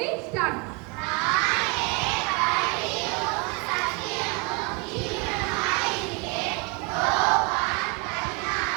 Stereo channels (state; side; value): quieter; left; 30.5 dB